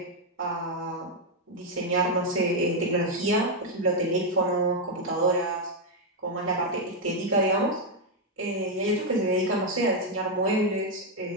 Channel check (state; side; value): normal; both; correlation 0.01